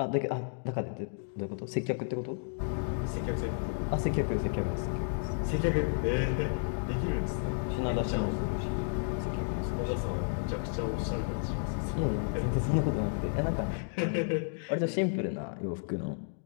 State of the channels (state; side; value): silent; right; digital silence